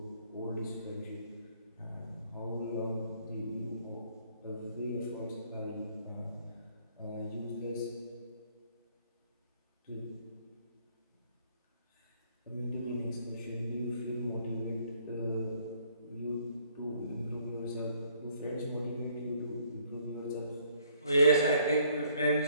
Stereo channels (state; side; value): inverted; both; correlation -0.64